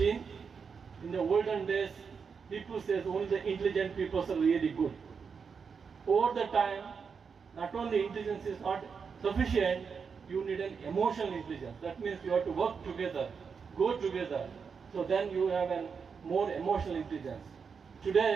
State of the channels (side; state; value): left; quieter; 5.9 dB